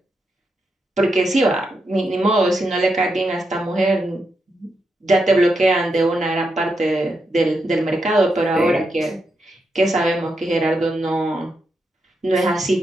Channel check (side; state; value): both; normal; correlation 0.84